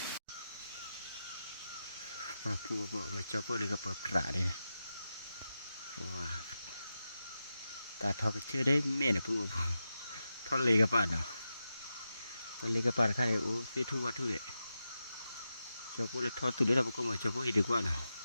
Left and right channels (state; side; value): inverted; both; correlation -0.90